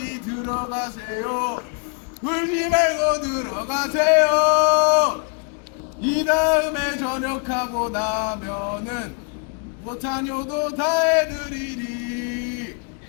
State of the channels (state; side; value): quieter; right; 38.4 dB